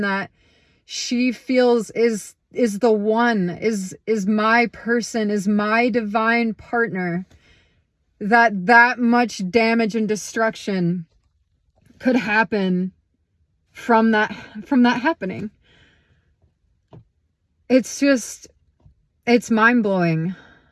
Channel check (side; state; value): both; identical; correlation 1.00